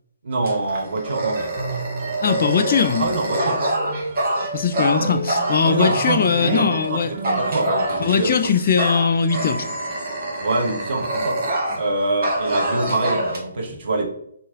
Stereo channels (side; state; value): both; inverted; correlation -0.63